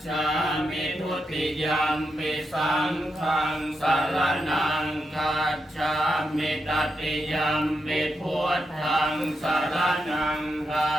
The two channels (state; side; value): normal; both; correlation 0.85